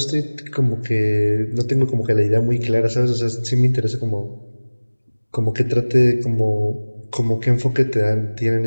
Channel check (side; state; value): both; inverted; correlation -1.00